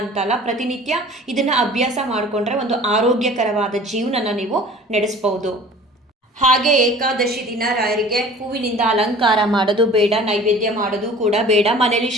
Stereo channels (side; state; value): both; normal; correlation 0.45